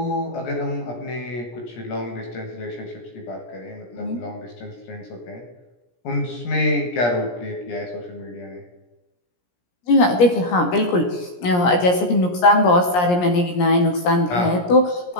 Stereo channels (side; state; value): right; late; 17 ms